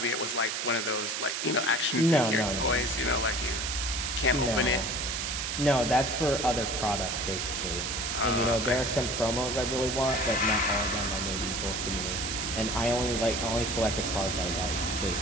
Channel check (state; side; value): noise; right; hiss, 2 dB below the sound